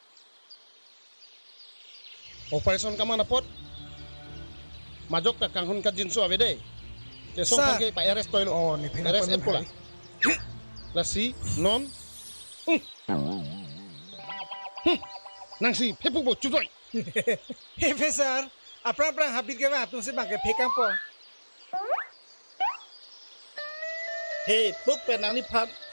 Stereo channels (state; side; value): inverted; both; correlation -1.00